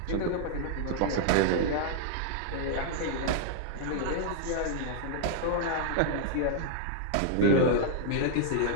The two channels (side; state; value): both; different; correlation -0.01